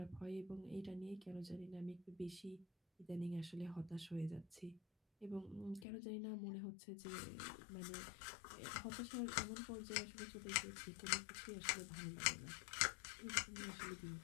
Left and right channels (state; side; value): drops out; right; at 5.9 s